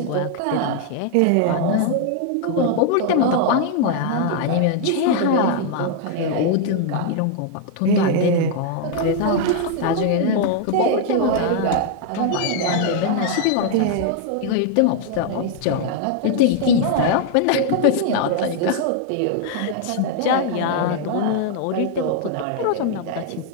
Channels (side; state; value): both; different; correlation 0.00